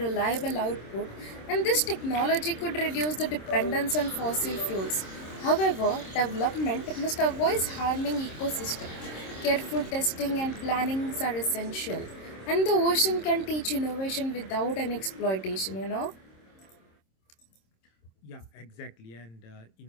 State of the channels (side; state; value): right; late; 26 ms